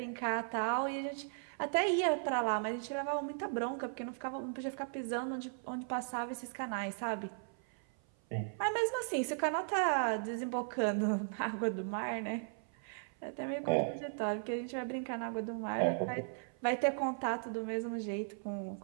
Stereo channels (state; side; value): silent; left; 53 dB below the other